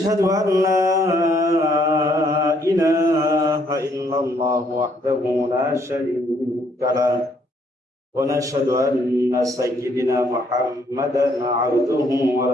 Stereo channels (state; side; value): normal; both; correlation 0.68